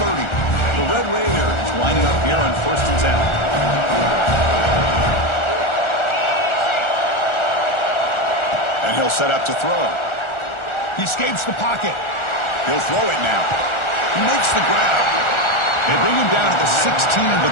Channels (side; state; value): right; late; 1.4 ms